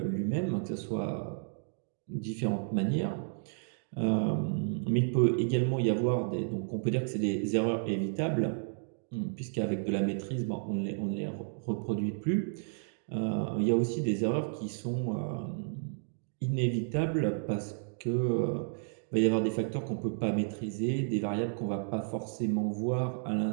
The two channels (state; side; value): silent; left; digital silence